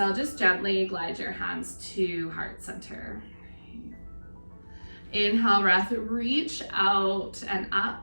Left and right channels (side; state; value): both; inverted; correlation -1.00